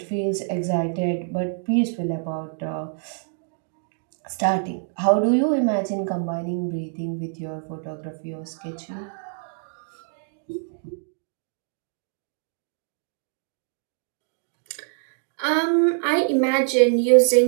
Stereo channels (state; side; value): silent; left; digital silence